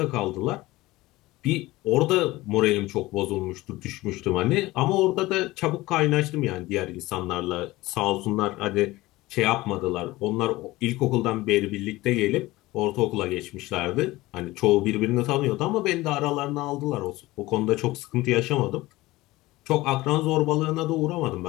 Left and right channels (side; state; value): right; quieter; 19.0 dB